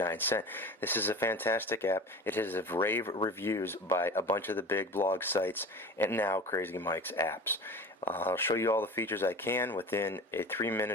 cents. This is a fantastic app. It has rave reviews by a bunch of the big blog sites and now Crazy Mike's apps. I'll show you all the features I can within a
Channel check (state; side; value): normal; both; correlation 0.36